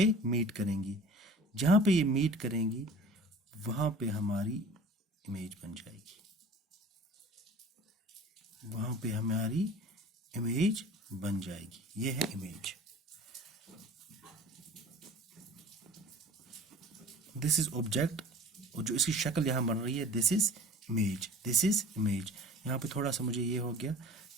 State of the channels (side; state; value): both; normal; correlation 0.43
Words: मीट करेंगी. जहाँ पे ये मीट करेंगी वहाँ पे हमारी इमेज बन जाएगी, वहाँ पे हमारी इमेज बन जाएगी. ये है इमेज. दिस इज ऑब्जेक्ट, और जो इसकी शक्ल यहाँ बन रही है, दिस इज इमेज. यहाँ पे थोड़ा सा मुझे ये हो गया